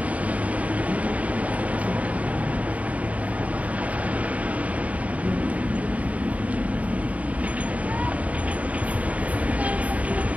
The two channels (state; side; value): late; left; 0.068 ms